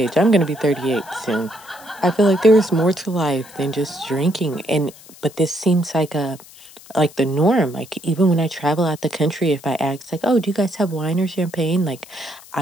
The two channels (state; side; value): noise; left; hiss, 21 dB below the sound